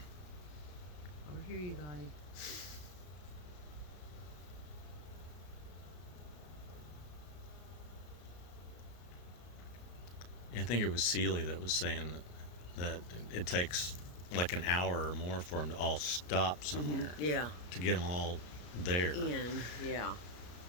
here, you guys. I think it was Seeley that was saying that it takes like an hour or more for them to all stop somewhere Yeah. to get them all there. In. Yeah.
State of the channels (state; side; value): late; right; 34 ms